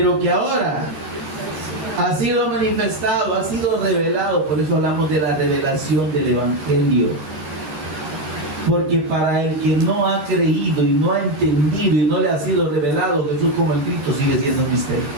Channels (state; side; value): late; left; 14 ms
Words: que ahora ha sido manifestado, ha sido revelado. Por eso hablamos de la revelación del Evangelio. Porque para el que no ha creído y no ha entendido y no le ha sido revelado Jesús como el Cristo, sigue siendo un misterio.